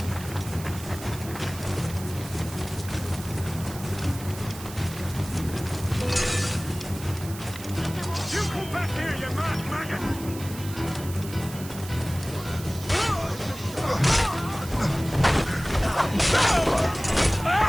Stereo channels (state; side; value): noise; right; hiss, 14 dB below the sound